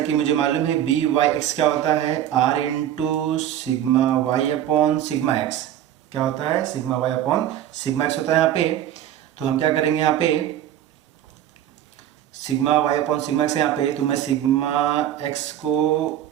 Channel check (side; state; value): left; quieter; 11.4 dB